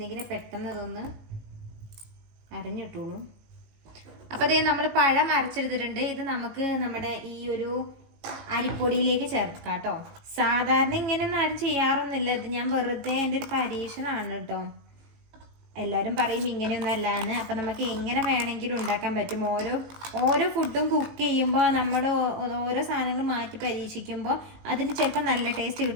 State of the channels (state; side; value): late; left; 18 ms